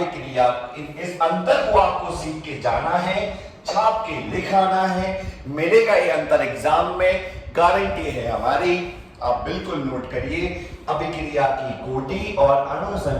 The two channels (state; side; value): identical; both; correlation 1.00